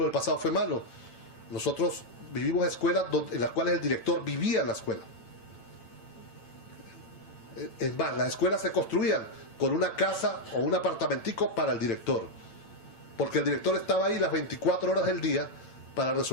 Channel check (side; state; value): right; late; 8.9 ms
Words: del pasado fue malo. Nosotros vivimos escuelas en las cuales el director vivía en la escuela. Es más, las escuelas se construían con una casa o un apartamentico para el director. Porque el director estaba ahí las 24 horas del día para